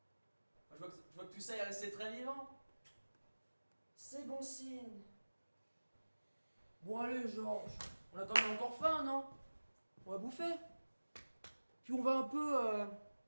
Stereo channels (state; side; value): inverted; both; correlation -1.00